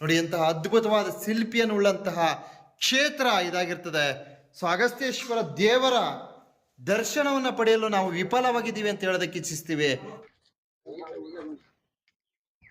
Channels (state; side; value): identical; both; correlation 1.00